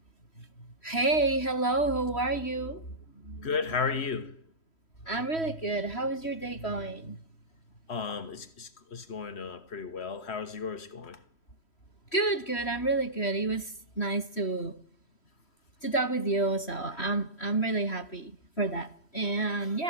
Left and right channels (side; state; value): right; late; 3.1 ms